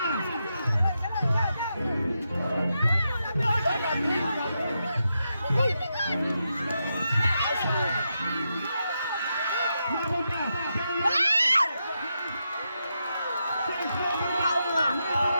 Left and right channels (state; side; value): inverted; both; correlation -0.85